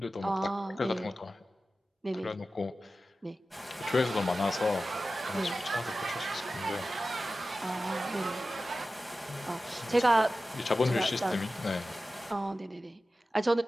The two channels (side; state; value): both; normal; correlation 0.94